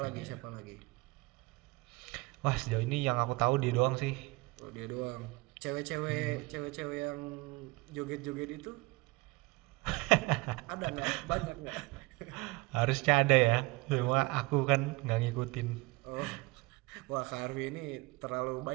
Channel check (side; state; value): left; quieter; 24.0 dB